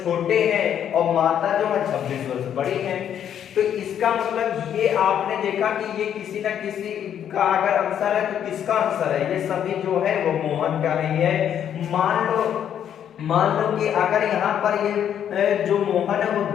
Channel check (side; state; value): right; quieter; 9.4 dB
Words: छोटे हैं और माता जो है 26 वर्ष बड़ी है। तो इसका मतलब ये आपने देखा कि ये किसी न किसी का अगर आंसर है तो किसका आंसर है, ये सभी जो है वो मोहन का नहीं है। मान लो कि अगर यहाँ पर ये जो मोहन है वो